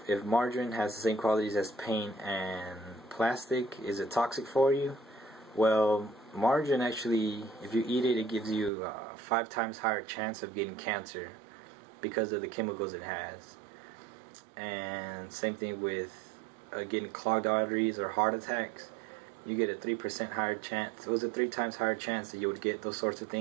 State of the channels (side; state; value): left; drops out; at 8.7 s